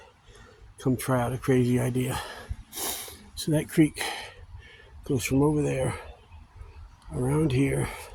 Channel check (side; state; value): both; identical; correlation 1.00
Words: come try out a crazy idea. So that creek goes from over there, around here,